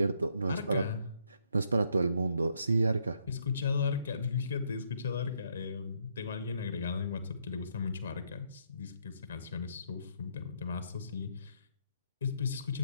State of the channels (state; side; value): inverted; both; correlation -0.72